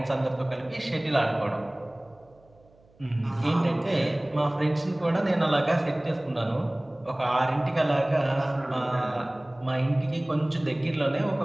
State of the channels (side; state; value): right; noise; hum, 30 dB below the sound